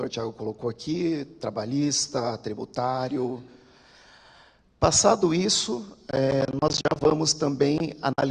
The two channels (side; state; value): both; identical; correlation 1.00